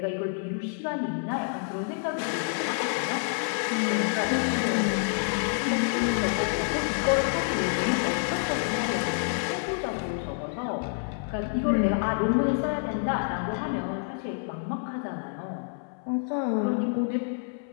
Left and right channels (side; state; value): right; silent; 59 dB below the other